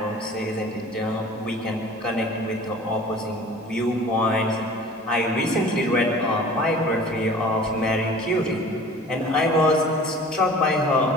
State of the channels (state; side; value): normal; both; correlation 0.45